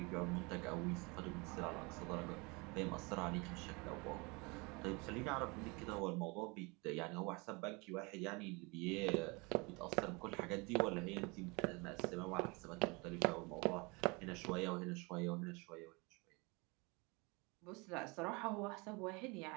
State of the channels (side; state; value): left; quieter; 27.7 dB